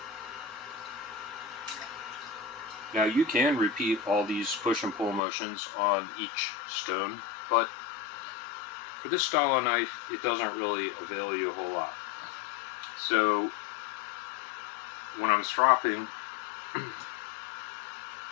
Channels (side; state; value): right; drops out; at 5.2 s